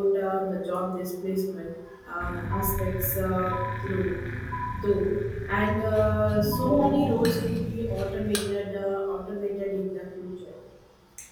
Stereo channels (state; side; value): identical; both; correlation 1.00